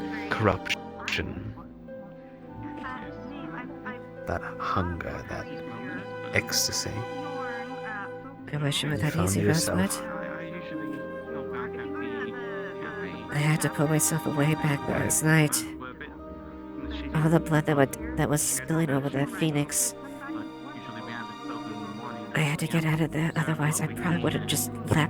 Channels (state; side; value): identical; both; correlation 1.00